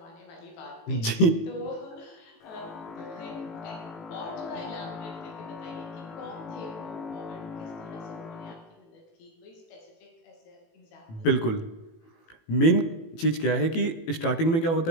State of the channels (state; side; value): late; right; 18 ms